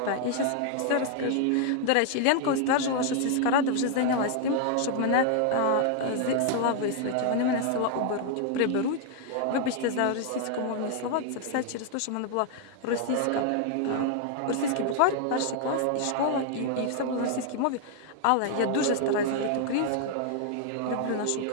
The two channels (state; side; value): different; both; correlation 0.00